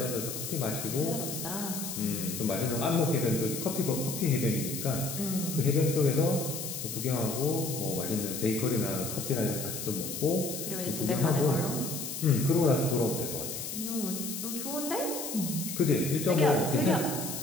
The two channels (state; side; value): noise; left; hiss, 6 dB below the sound